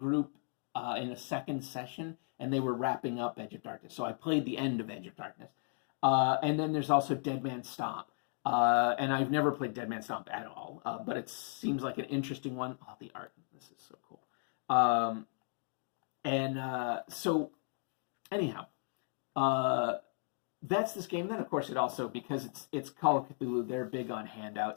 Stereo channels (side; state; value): right; silent; 54 dB below the other